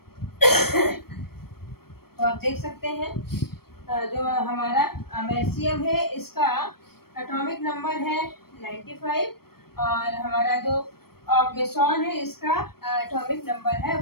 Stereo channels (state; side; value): late; right; 0.94 ms